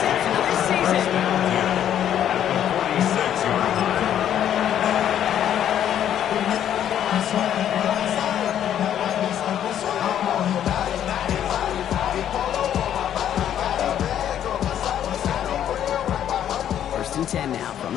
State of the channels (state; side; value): quieter; right; 10.3 dB